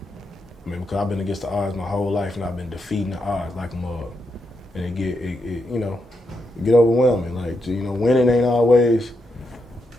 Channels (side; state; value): both; normal; correlation 0.83